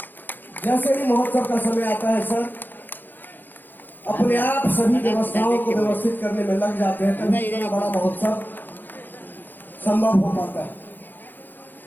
जैसे ही महोत्सव का समय आता है सर, अपने आप सभी व्यवस्थाओं को व्यवस्थित करने में लग जाते हैं, तभी इतना बड़ा महोत्सव संभव हो पाता है।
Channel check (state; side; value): late; right; 0.092 ms